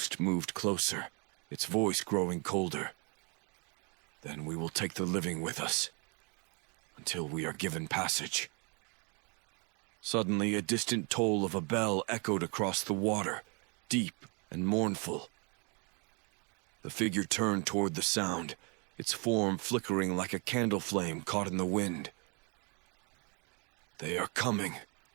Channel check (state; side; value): quieter; left; 33.7 dB